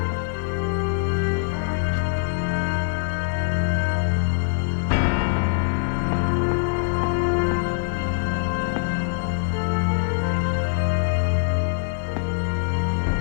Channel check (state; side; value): silent; right; 63 dB below the other